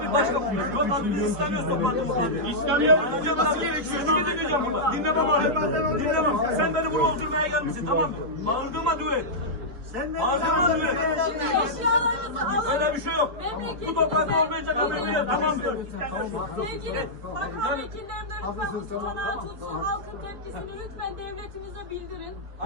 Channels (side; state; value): left; late; 4.6 ms